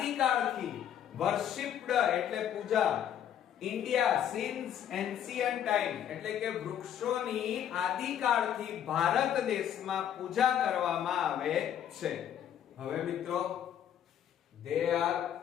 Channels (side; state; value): right; quieter; 9.9 dB